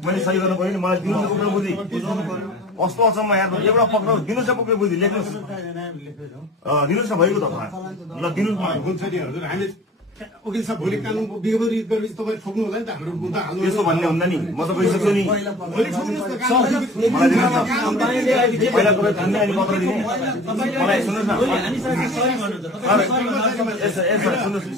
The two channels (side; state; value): both; normal; correlation 0.41